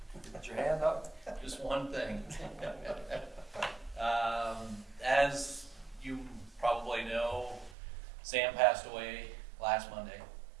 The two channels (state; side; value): drops out; left; at 7.8 s